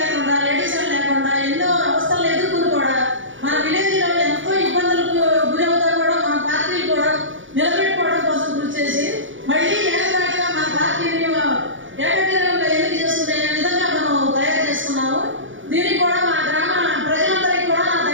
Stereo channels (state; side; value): late; left; 0.56 ms